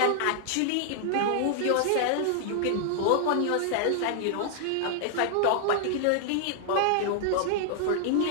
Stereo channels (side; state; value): both; different; correlation 0.00